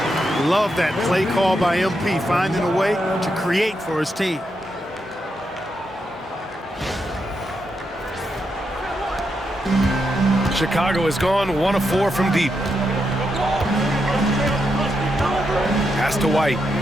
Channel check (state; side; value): normal; both; correlation 0.83